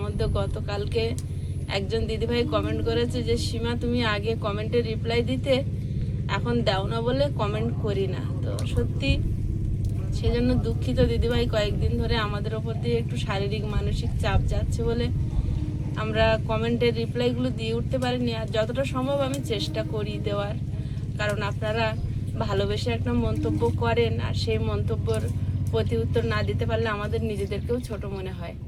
মধ্যে গতকালকে একজন দিদিভাই কমেন্ট করেছে যে সীমা তুমি আগে কমেন্টে রিপ্লাই দিতে, এখন দাও না বলে কমেন্ট করি না। তো সত্যি সেজন্য দুঃখিত দিদিভাই, কয়েকদিন ধরে আমাদের ওপর দিয়ে একটু শারীরিক মানসিক চাপ যাচ্ছে বলে আমরা কমেন্টের রিপ্লাইগুলো দিয়ে উঠতে পারিনি। আর যতটা সম্ভব আমি চেষ্টা করি দেওয়ার, কারণ আপনারা ভালোবেসে একটা মন্তব্য করেন আর সেই মন্তব্যর প্রতি উত্তর না দিতে পারলে আমাদের নিজেদেরকেও ছোট মনে হয়।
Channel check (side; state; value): both; identical; correlation 1.00